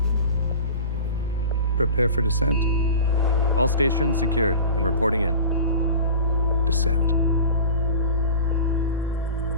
Prepare for descent. All stations secured and reporting in. Descend.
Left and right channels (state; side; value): inverted; both; correlation -0.35